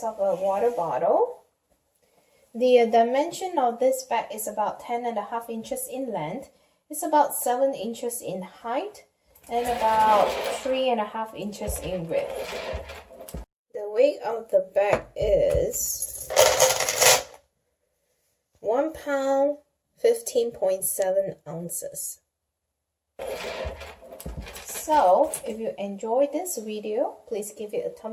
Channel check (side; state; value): both; identical; correlation 1.00